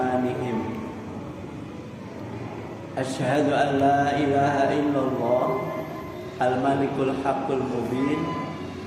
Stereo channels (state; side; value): identical; both; correlation 1.00